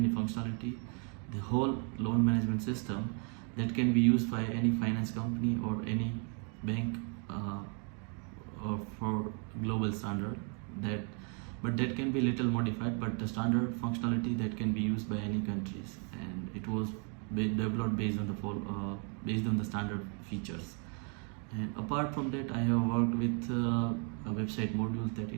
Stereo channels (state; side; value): quieter; left; 38.8 dB